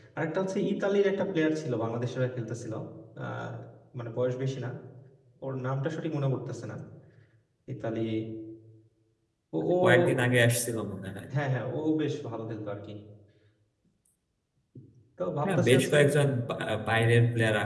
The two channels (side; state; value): both; identical; correlation 1.00